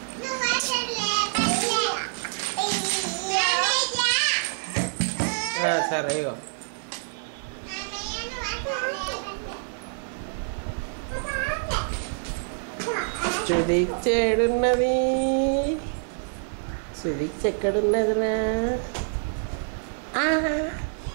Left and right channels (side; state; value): left; silent; 61 dB below the other